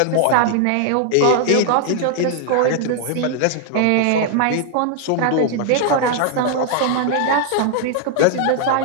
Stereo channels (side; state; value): both; different; correlation 0.00